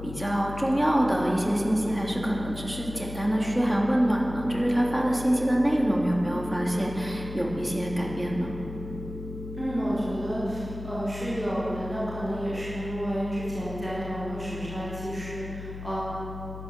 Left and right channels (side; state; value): left; noise; hum, 10 dB below the sound